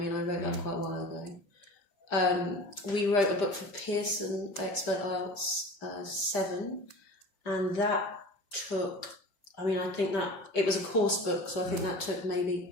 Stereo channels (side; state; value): right; late; 5.0 ms